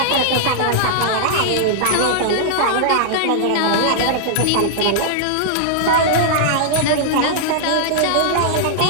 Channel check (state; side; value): different; both; correlation -0.01